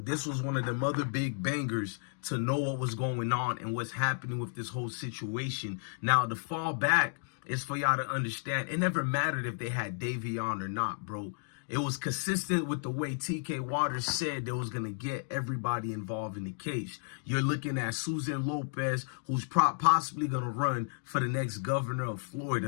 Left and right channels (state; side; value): silent; right; digital silence